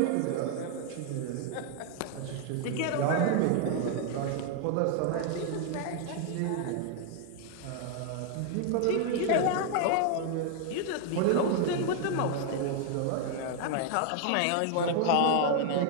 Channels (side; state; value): both; different; correlation 0.00